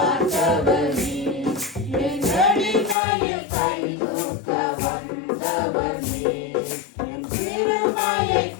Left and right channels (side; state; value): right; drops out; at 3.0 s